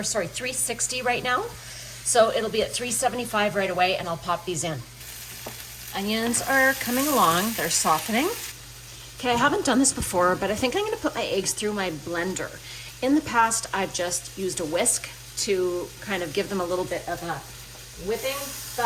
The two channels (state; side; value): identical; both; correlation 1.00